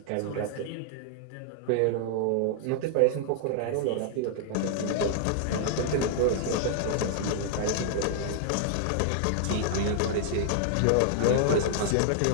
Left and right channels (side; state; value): both; different; correlation -0.01